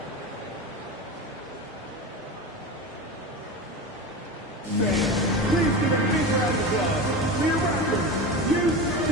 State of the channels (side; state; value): both; normal; correlation 0.26